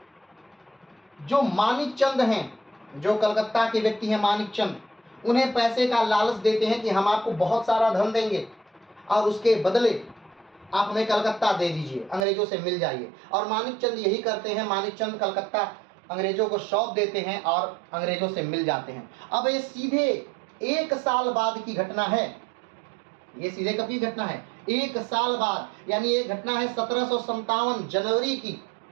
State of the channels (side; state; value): left; drops out; at 12.2 s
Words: जो मानिक चंद हैं, जो कलकत्ता के व्यक्ति हैं मानिक चंद, उन्हें पैसे का लालच देते हैं कि हम आपको बहुत सारा धन देंगे और उसके बदले आप हमें कलकत्ता दे दीजिए, अंग्रेजों से मिल जाइए। और मानिक चंद यही करते हैं, मानिक चंद कलकत्ता अंग्रेजों को सौंप देते हैं और अंग्रेजों से मिल जाते हैं। अब ये सीधे 1 साल बाद की घटना है, ये सीधे कब की घटना है, 1 साल बाद, यानी ये घटना है 1757 जनवरी की।